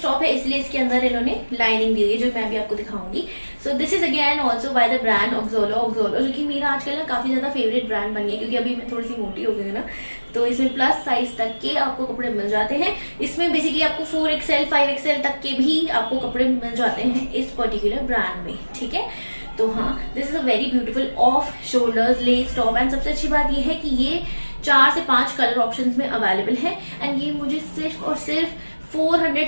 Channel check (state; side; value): inverted; both; correlation -1.00